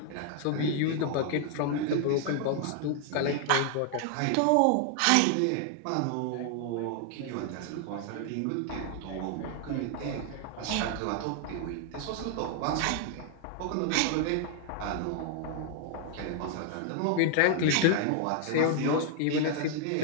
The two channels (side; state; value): both; different; correlation 0.00